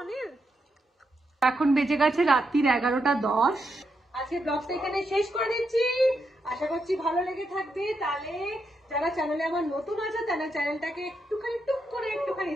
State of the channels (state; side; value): normal; both; correlation 0.82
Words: অনিল। এখন বেজে গেছে রাত্রির 11:10। আজকে ব্লগটা এখানে শেষ করে দিচ্ছি, আশা করছি ভালো লেগে থাকবে। তাহলে যারা চ্যানেলে আমার নতুন আছে তারা চ্যানেলটাকে একটুখানি টুক করে একটুখানি